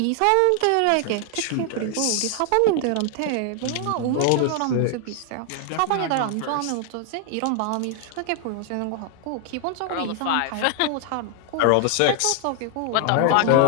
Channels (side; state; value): both; different; correlation 0.00